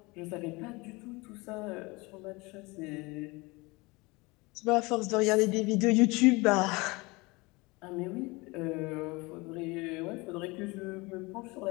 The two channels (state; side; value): quieter; right; 24.7 dB